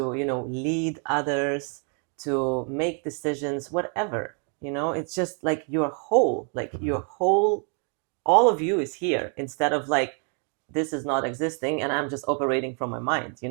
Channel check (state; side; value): quieter; left; 39.7 dB